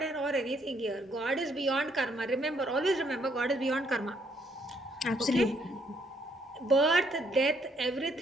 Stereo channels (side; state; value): both; normal; correlation 0.70